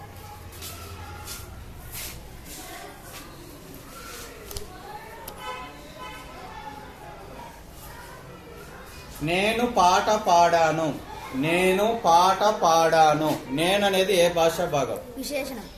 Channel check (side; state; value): both; identical; correlation 1.00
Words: నేను పాట పాడాను. నేను పాట పాడాను. నేను అనేది ఏ భాషా భాగం? విశేషణం.